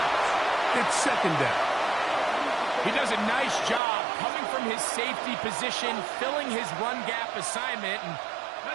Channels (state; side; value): drops out; left; at 3.8 s